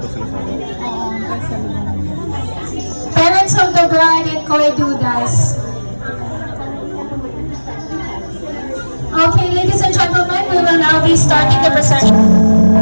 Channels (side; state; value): both; inverted; correlation -1.00